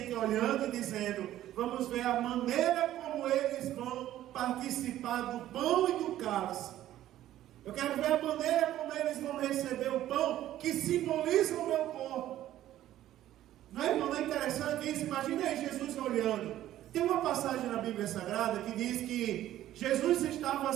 olhando e dizendo, vamos ver a maneira como eles vão participar do pão e do cálice. Eu quero ver a maneira como eles vão receber o pão, que simboliza o meu corpo. Não é, irmão? Não é interessante isso? Imagina aí Jesus olhando. Tem uma passagem na Bíblia Sagrada que diz que Jesus estava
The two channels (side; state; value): left; quieter; 13.2 dB